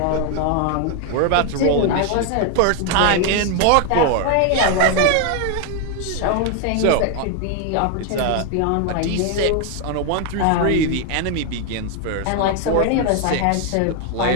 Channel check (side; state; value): both; different; correlation 0.01